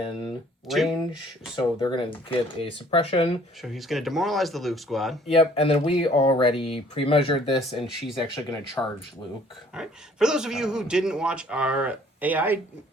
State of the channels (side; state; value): both; normal; correlation 0.57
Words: range, so they're going to get a suppression. So he's going to demoralize the Luke squad. Yep, and then we already pre-measured this, and she's actually going to charge Luke. All right. For those of you who didn't watch our AI